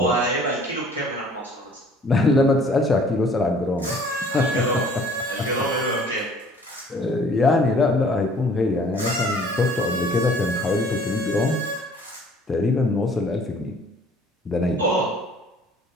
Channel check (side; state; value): both; normal; correlation 0.54